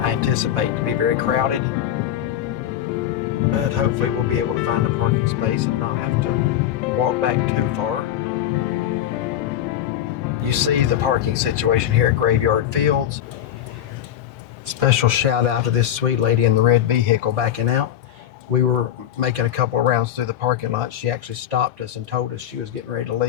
anticipate to be very crowded. But hopefully we'll be able to find a parking space and not have to walk back too far. You see the parking situation here at Graveyard Fields. Special shout out to this sweet lady in the red vehicle backing out. We were making a couple of rounds through the parking lot. She actually stopped us and told us she was getting ready to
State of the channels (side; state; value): right; quieter; 10.9 dB